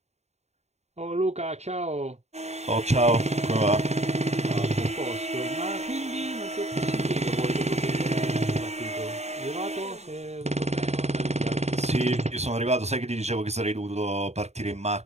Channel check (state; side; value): late; left; 0.32 ms